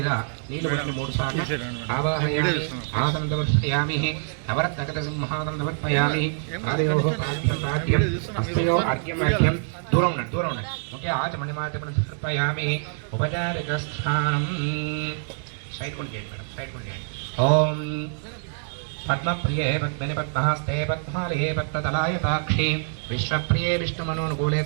నీళ్ళు పట్టి 3 సార్లు ఆవాహయామి ఆసందవర్పయామి నవరత్నగత సింహాసందవర్పయామి ఆదయోః పాద్యం హస్తయో అర్ఘ్యం అర్ఘ్యం దూరం ఉండండి ఓకే ఆచమణిమాచమణ సమర్పయామి ఉపచారిక స్థానం సైడ్ కొండి మేడం సైడ్ కొండి। ఓం पद्मप्रिये पद्मनि पद्महस्ते पद्मालये पद्मतलायताक्षी विश्वप्रिये विष्णुमनोनुकूले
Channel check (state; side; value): silent; left; digital silence